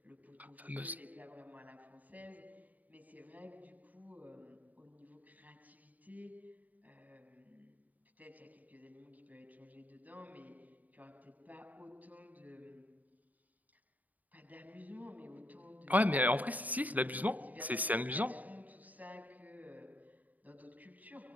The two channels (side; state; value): left; late; 0.077 ms